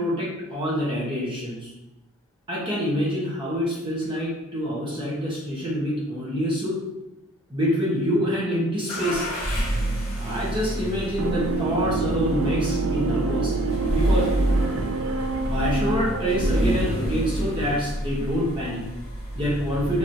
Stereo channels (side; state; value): both; normal; correlation 0.58